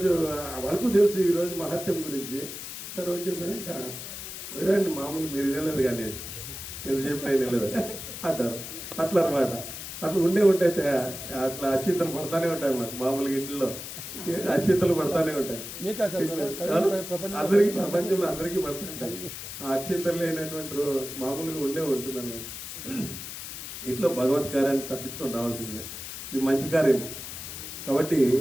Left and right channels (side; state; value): left; noise; hiss, 9 dB below the sound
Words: వాళ్ళకు తెలుసు ఈరోజు మహత్యం గురించి. సరే రోజు చెప్పాక వినండి, మామూలు మీరు వినలేదు కానీ ఎందుకు చెప్పినా వినలేదు అంటారు. అట్లా అనమాట. అట్లా ఉంటే అట్లా అక్షింతలు పడతానే ఉంటాయి. మాకు మామూలుగా ఇంట్లో అక్షింతలు పడతానే ఉంటాయి. అందరికీ, ప్రపంచంలో అందరికీ పడుతుంటాయి. ఆ అక్షింతలు లేనటువంటి మామూలుగా ఉంటుంది అన్నమాట. ఇట్లా భగవత్ కార్యాన్ని తప్పించుకొని రావాల్సిందే. ఇది మంచి కార్యము కాబట్టి